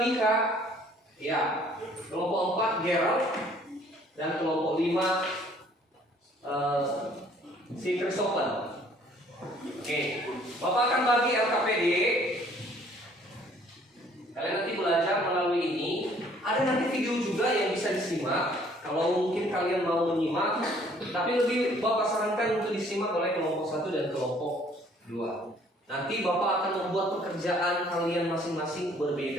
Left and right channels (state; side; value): normal; both; correlation 0.59